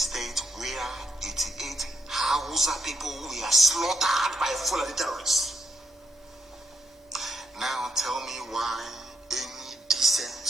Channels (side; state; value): both; normal; correlation 0.80